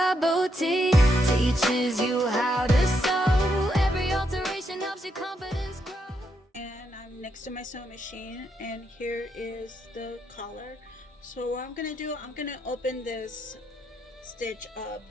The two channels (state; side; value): normal; both; correlation 0.79